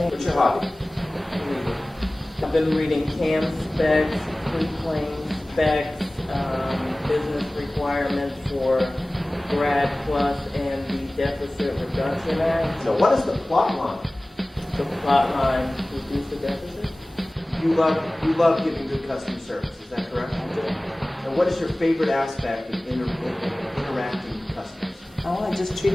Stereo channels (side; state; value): both; normal; correlation 0.98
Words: What's your hobby? I've been reading CAM specs, pre-claim specs, business requirements for Grad Plus and the Deficit Reduction Act. So what is the plot line? The plot line, reduce the deficit. You love giving good customer service, is that correct? I do. And what is your favorite aspect of interacting with customers? Oh, I just